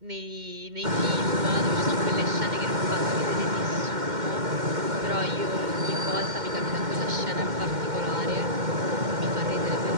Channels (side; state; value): left; late; 2.1 ms